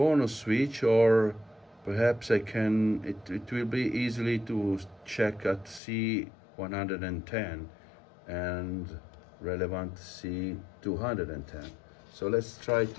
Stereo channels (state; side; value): drops out; right; at 5.8 s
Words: switch, or perhaps I can, it will be easily to check at C110 and relevant C210. So let's try